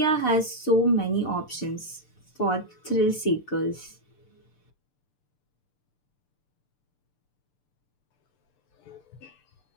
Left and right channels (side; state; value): right; late; 6.8 ms